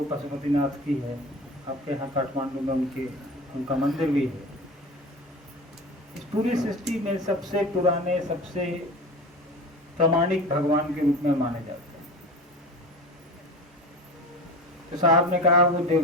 पशुपतिनाथ की है। आपके यहाँ काठमांडू में उनका मंदिर भी है। इस पूरी सृष्टि में सबसे पुराने, सबसे प्रामाणिक भगवान के रूप में माने जाते हैं। तो साहब ने कहा वो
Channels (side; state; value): both; normal; correlation 0.33